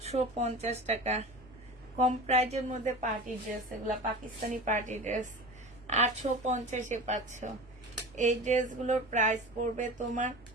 টাকা। কম প্রাইজের মধ্যে পার্টি ড্রেস, এগুলা পাকিস্তানি পার্টি ড্রেস। 850-এ পাচ্ছ। এই ড্রেসগুলোর প্রাইস পড়বে তোমার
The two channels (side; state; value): both; normal; correlation 0.33